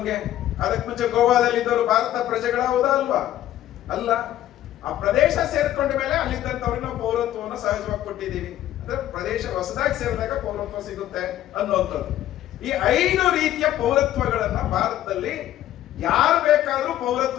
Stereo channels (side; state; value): right; quieter; 13.0 dB